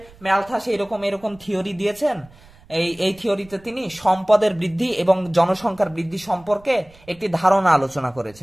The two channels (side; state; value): right; noise; rumble, 26 dB below the sound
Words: ম্যালথাস এরকম থিওরি দিয়েছেন, এই থিওরিতে তিনি সম্পদের বৃদ্ধি এবং জনসংখ্যার বৃদ্ধি সম্পর্কে একটি ধারণা আলোচনা